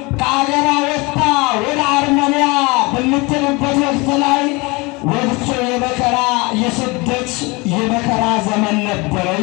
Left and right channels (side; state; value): right; quieter; 25.9 dB